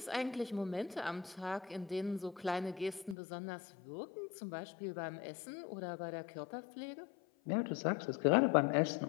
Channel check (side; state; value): right; drops out; at 3.2 s